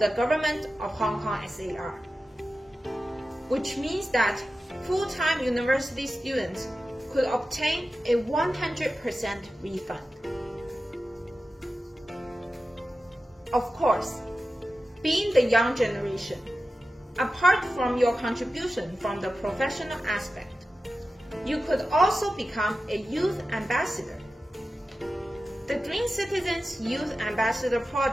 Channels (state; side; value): normal; both; correlation 0.93